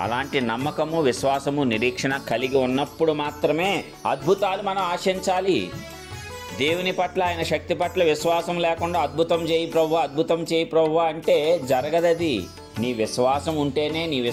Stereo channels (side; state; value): both; identical; correlation 1.00